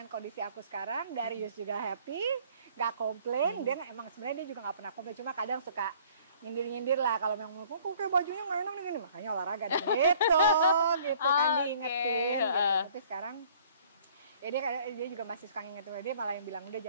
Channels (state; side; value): inverted; both; correlation -0.56